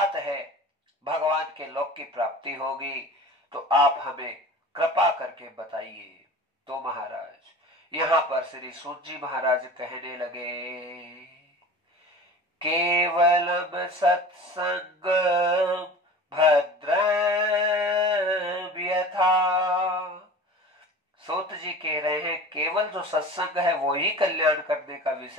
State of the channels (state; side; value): normal; both; correlation 0.38